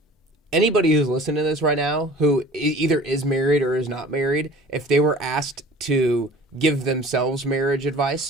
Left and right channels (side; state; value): both; normal; correlation 0.45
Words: anybody who's listening to this right now who either is married or is not married, if they were asked to give themselves marriage